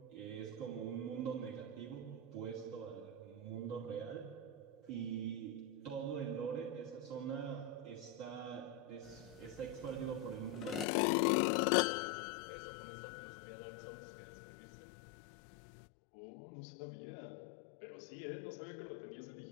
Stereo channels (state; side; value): drops out; right; at 10.9 s